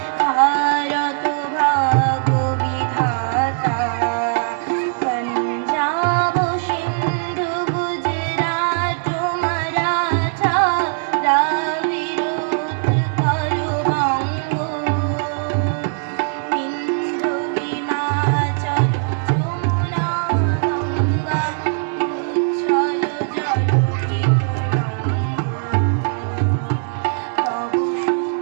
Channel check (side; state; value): left; silent; digital silence